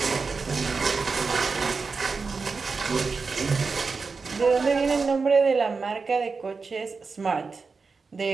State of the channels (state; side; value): quieter; left; 4.6 dB